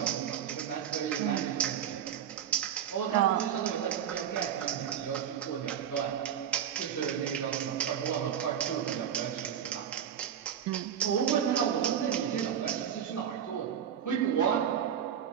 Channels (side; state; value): left; quieter; 9.0 dB